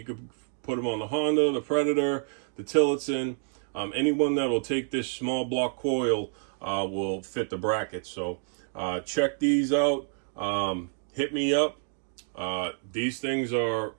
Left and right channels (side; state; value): left; silent; 55 dB below the other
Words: could put them on the Honda, the Predator, the Tillotson. Anyone that will take this small block coil will fit the bracket. So check these out. Hit me up. These things are